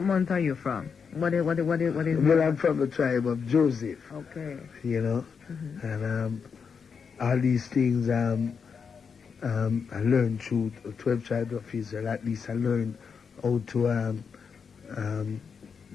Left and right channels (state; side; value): quieter; right; 6.1 dB